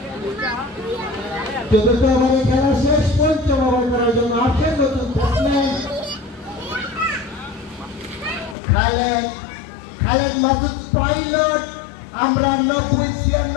ওভারে খেলা শেষ। পঞ্চম ওভার করার জন্য আসছেন নতুন ব্যাটসম্যান খালেদ মাসুদ পাইলট। আমরা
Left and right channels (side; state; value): right; drops out; at 8.6 s